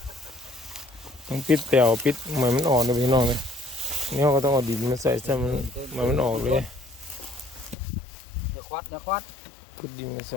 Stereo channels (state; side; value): drops out; right; at 7.8 s